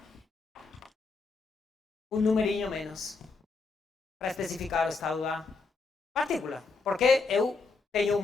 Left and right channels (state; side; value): quieter; right; 4.2 dB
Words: um numerinho menos para especificar o estado da partícula, porque eu tenho